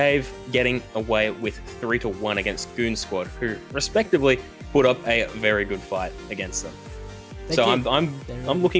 getting away with 3-1 against Goon Squad, who respectively put up a very good fight against them. I'm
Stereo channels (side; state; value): both; identical; correlation 1.00